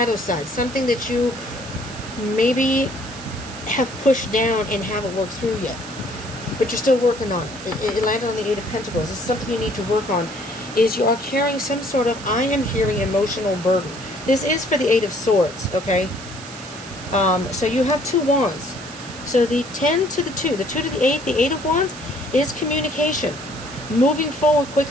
side, something that you maybe have pushed down and haven't worked through yet, but you're still working on it. It landed on the Eight of Pentacles. This is something you need to work on, is you are carrying some sort of, I am hearing, emotional burden. This is for the Eight of Swords, okay? So you have 2 wands. So the 10 to the 2 to the 8, the Eight of Wands, is communication, moving forward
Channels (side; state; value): right; noise; hiss, 15 dB below the sound